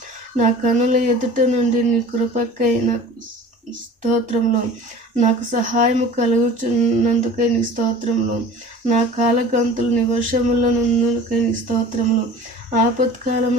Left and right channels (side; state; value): both; normal; correlation 0.42